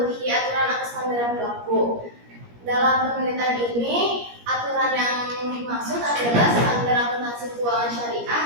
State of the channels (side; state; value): left; late; 17 ms